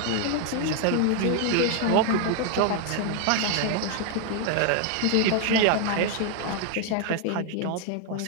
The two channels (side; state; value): both; different; correlation 0.00